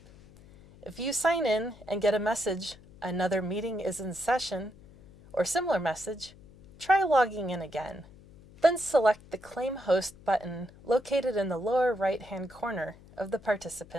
If you sign in and get a message, "Another meeting is in session," or similar message, try logging in again. Then select the Claim Host button located in the lower right-hand corner of the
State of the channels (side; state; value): left; noise; hum, 22 dB below the sound